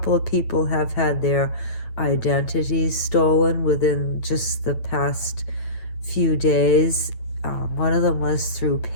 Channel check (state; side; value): late; right; 8.9 ms